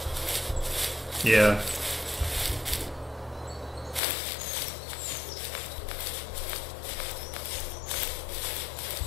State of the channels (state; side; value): drops out; right; at 4.0 s